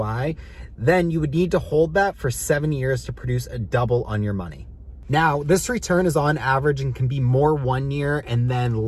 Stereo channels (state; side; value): identical; both; correlation 1.00